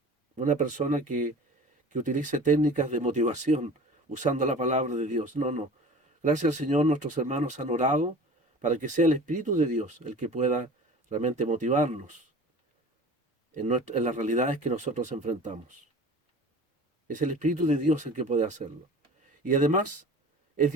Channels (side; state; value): both; normal; correlation 0.40